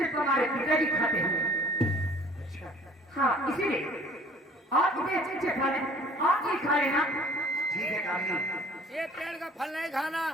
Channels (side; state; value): both; normal; correlation 0.51